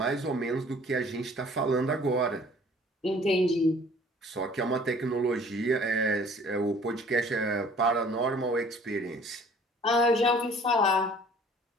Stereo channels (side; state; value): both; normal; correlation 0.53